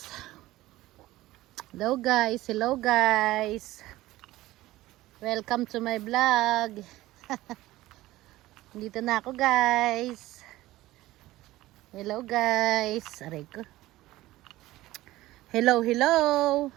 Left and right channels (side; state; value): left; quieter; 16.9 dB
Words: Hello guys! Welcome to my vlog. Dito na ako guys. Hello guys. Aray ko. Hello.